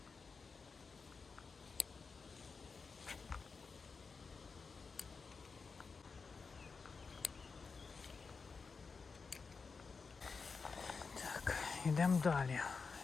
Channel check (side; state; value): right; quieter; 4.8 dB